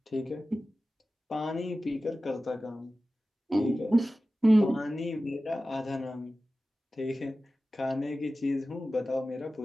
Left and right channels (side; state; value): both; normal; correlation 0.95